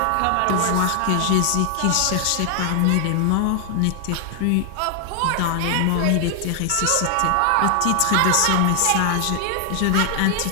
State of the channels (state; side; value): different; both; correlation 0.00